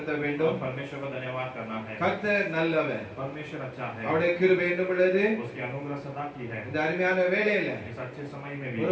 வேண்டும். परमेश्वर को धन्यवाद करना है। கர்த்தர் நல்லவர். परमेश्वर अच्छा है। அவருடைய கிருபை என்ன உள்ளது? उसकी अनुग्रह सदा की है। இந்த அருமையான வேளையில इस अच्छे समय में भी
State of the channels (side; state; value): both; identical; correlation 1.00